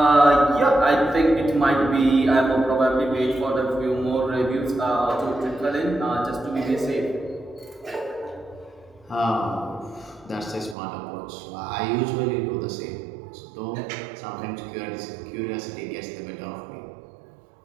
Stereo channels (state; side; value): drops out; left; at 10.8 s